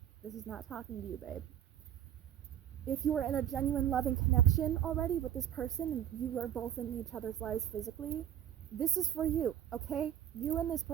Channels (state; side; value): quieter; left; 10.4 dB